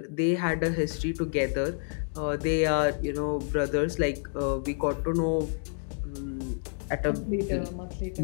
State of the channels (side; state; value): right; silent; 59 dB below the other